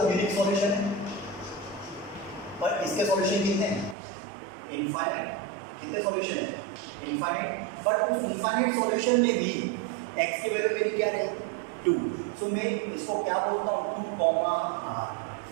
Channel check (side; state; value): left; drops out; at 4.0 s